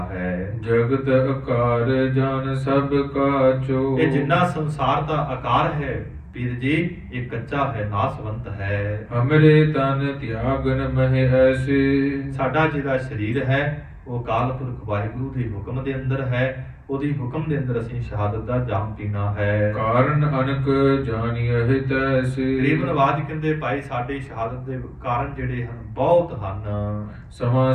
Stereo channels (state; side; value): identical; both; correlation 1.00